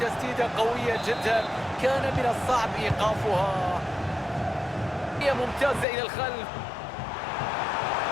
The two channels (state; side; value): drops out; right; at 5.9 s